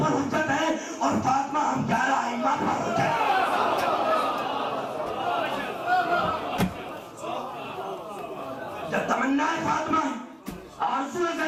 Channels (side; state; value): both; identical; correlation 1.00